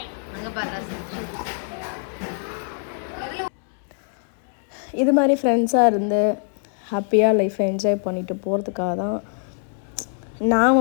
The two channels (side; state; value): right; silent; 63 dB below the other